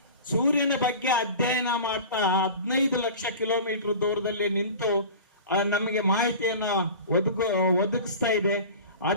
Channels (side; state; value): both; inverted; correlation -0.37